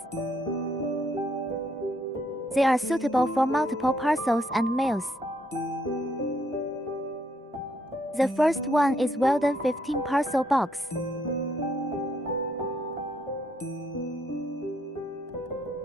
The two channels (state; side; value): normal; both; correlation 0.72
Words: They are suitable for multiple parcels and mails. The first one is Weldon 15 parcel box.